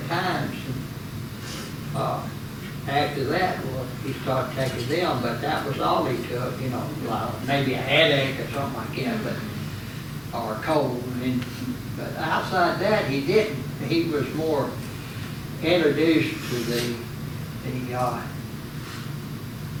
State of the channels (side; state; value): both; identical; correlation 1.00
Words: times. And, after that, well, he started taking them, but that was all he took, you know, maybe a headache or something like that, but, or a cold. But outside that, he didn't. He was more introduced to the